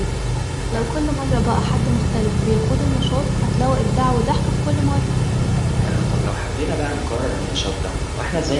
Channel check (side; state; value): both; identical; correlation 1.00